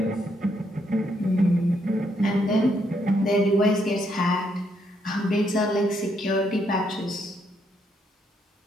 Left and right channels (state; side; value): normal; both; correlation 0.75